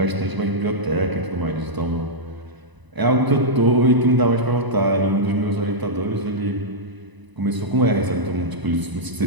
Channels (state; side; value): late; left; 1.0 ms